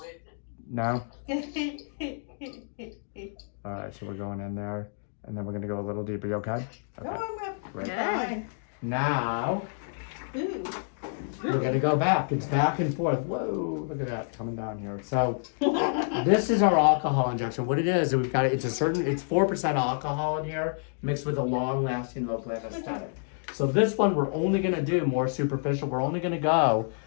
No? Alright, so we're going in there and then we're gonna go a little deeper. You okay? No, Okay. I'm not. Right. Fine. Now Ooh. we're gonna go back. It's back and forth. Whoa, look at that coming down here. So this is our alcohol injection. What it is, we've got it's 4% alcohol in here mixed with a long-lasting local anesthetic. So this one we're only gonna do more superficial. We're only gonna go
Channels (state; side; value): silent; right; digital silence